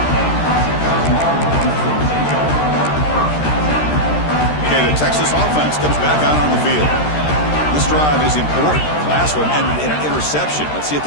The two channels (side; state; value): right; late; 13 ms